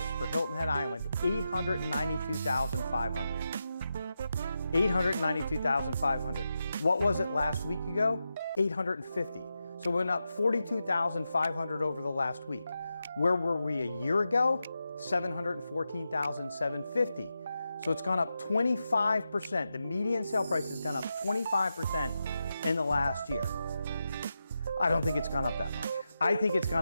for Hilton Head Island, $892,500. $892,500. What was it last week ago? $850. So it went up $42,500 over the last week. Where were we a year ago? $714,750. So it's gone up 25%. The median sale price has gone up 25% in the last year. I don't think it's gone up that much. I think it's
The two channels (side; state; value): both; inverted; correlation -0.89